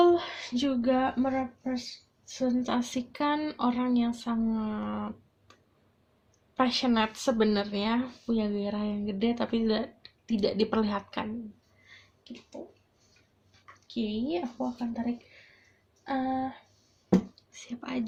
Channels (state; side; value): identical; both; correlation 1.00